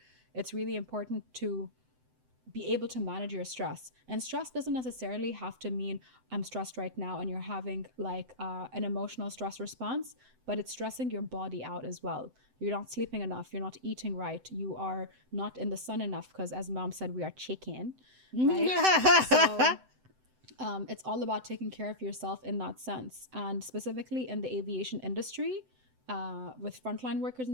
it's really important to be able to manage your stress. And stress doesn't necessarily have to mean I'm stressed right now and you're having like an emotional stress response, but it's stressing your body out as well. You're not sleeping enough, you're not eating right, you are not in the sun enough, because as mom said, we are chicken, right? So it's all about taking care of yourself in that sense. And specifically in the aviation industry, with frontline workers in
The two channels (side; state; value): left; late; 7.8 ms